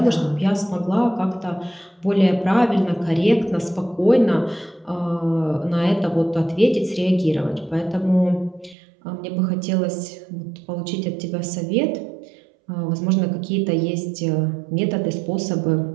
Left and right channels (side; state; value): left; drops out; at 8.8 s